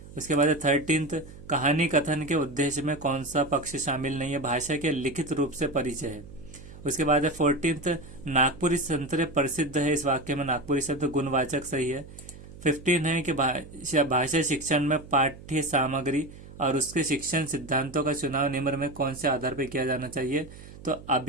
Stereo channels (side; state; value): right; noise; hum, 17 dB below the sound